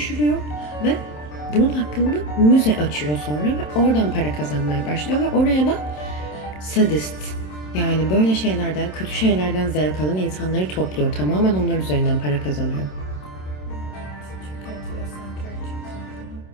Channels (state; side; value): late; right; 27 ms